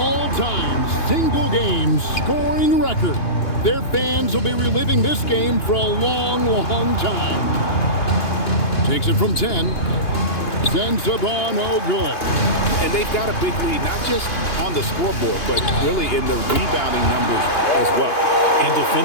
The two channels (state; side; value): late; right; 2.9 ms